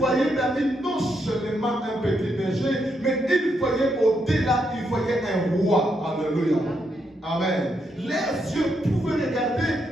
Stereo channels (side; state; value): both; normal; correlation 0.79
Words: David non seulement un petit berger, mais il voyait au-delà, il voyait un roi. Alléluia. Amen. Les yeux pouvaient regarder,